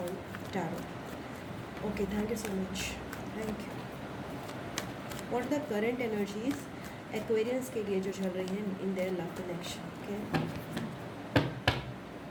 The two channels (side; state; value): both; identical; correlation 1.00